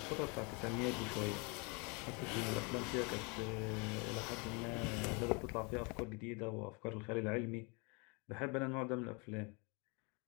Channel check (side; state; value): right; quieter; 31.6 dB